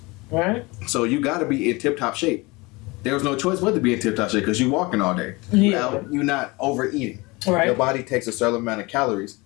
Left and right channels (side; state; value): right; quieter; 24.4 dB